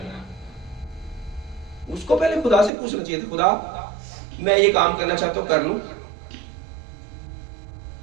उसको पहले खुदा से पूछना चाहिए था, खुदा मैं ये काम करना चाहता हूं, कर लूं,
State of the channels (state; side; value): drops out; left; at 2.7 s